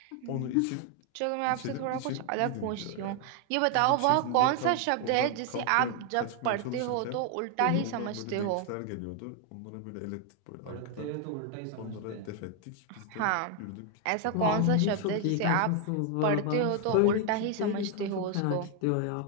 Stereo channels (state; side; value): different; both; correlation 0.00